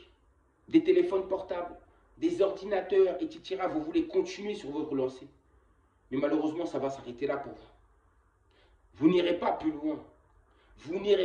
des téléphones portables, des ordinateurs, etc. Vous voulez continuer sur votre lancée. Mais malheureusement, ça va s'arrêter là pour vous. Vous n'irez pas plus loin. Vous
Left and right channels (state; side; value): identical; both; correlation 1.00